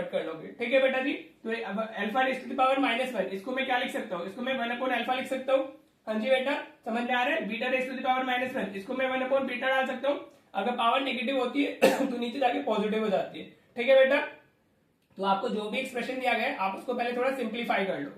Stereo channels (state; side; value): identical; both; correlation 1.00